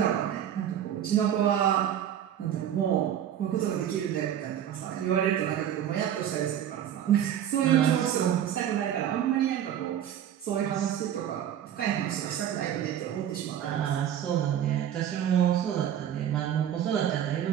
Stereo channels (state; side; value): quieter; left; 10.2 dB